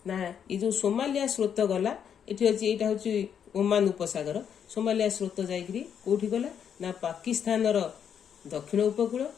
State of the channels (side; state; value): right; quieter; 8.2 dB